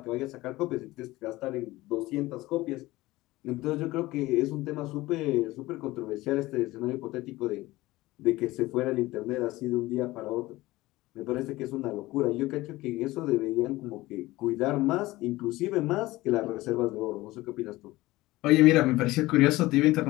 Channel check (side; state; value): right; quieter; 18.8 dB